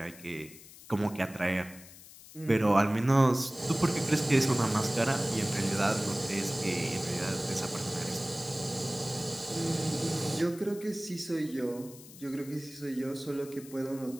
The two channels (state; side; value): noise; left; hiss, 19 dB below the sound